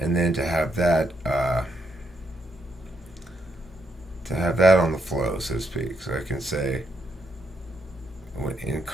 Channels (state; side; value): normal; both; correlation 0.78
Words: then to have that on the flow, so to speak. So I can say, in